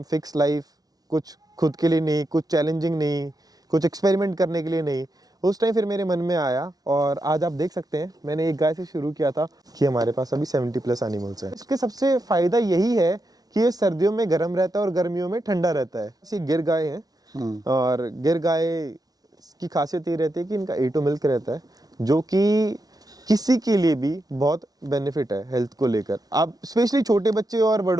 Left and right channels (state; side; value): late; left; 0.18 ms